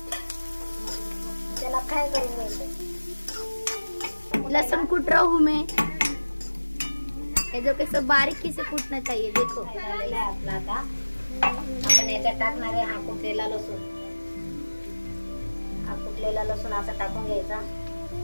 त्याला फ्राय करून घ्यायचं. लहसुन कूट रहा हूँ मैं, ये जो कैसे बारीकी से कूटना चाहिए देखो. झालेला आहे आपला. आता आपण याच्यात टाकणार आहे हा कुटलेला लसूण. हा कुटलेला लसूण असा टाकून घ्यायचा.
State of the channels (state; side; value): inverted; both; correlation -1.00